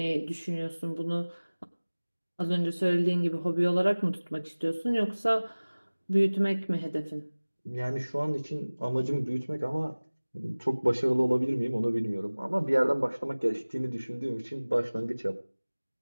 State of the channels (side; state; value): both; inverted; correlation -1.00